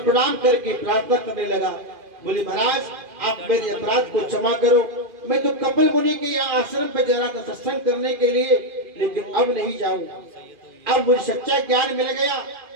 प्रणाम करके प्रार्थना करने लगा। बोले महाराज, आप मेरे अपराध को क्षमा करो। मैं तो कपिल मुनि के यहाँ आश्रम पे जा रहा था सत्संग करने के लिए, लेकिन अब नहीं जाऊं। अब मुझे सच्चा ज्ञान मिल गया,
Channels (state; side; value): late; left; 2.4 ms